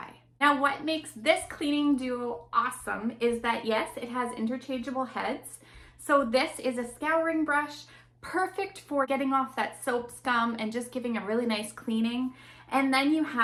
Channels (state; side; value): identical; both; correlation 1.00